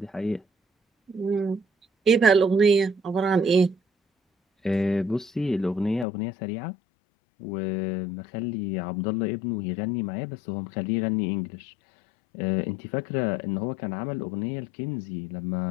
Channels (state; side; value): drops out; right; at 6.1 s